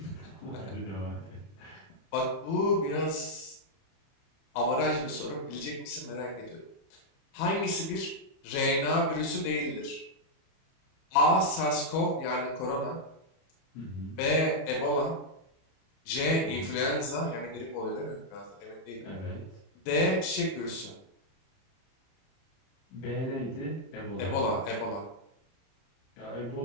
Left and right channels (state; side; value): late; right; 31 ms